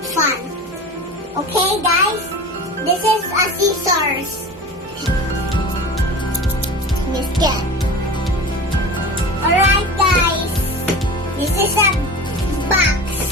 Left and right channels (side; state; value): both; normal; correlation 0.34